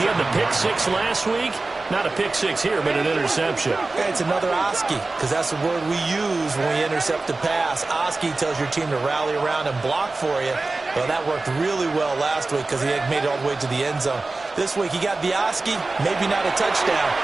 had the pick 6 last week. Not a pick 6 here, but an interception. It's another Oski, because that's the word we use when we intercept a pass. Oski tells your team to rally around and block for you. Well, that worked really well last week because he had made it all the way to the end zone. This week he got the Oski, maybe not a touchdown,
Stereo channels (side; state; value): left; quieter; 3.4 dB